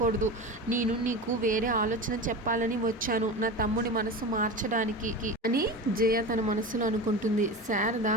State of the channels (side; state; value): both; normal; correlation 0.27